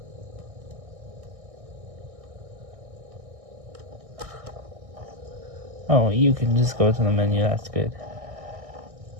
Oh, you can just go to the menu, that's good.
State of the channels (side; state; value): left; late; 1.6 ms